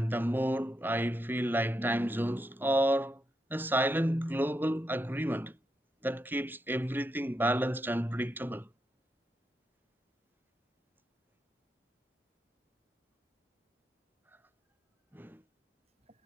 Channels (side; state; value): both; normal; correlation 0.83